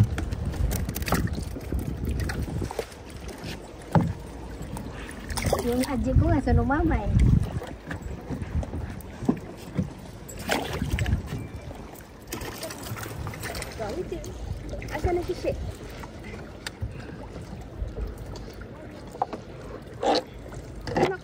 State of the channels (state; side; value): identical; both; correlation 1.00